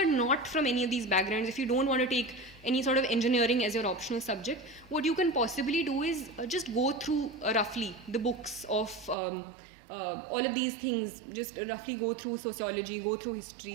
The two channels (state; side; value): drops out; left; at 9.2 s